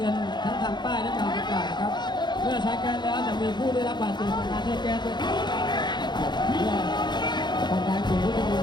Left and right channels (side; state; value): right; late; 0.21 ms